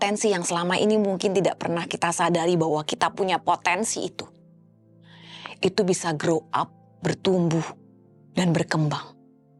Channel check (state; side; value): identical; both; correlation 1.00